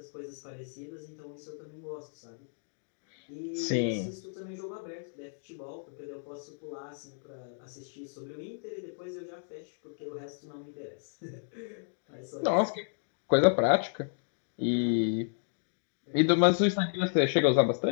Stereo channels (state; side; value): silent; right; digital silence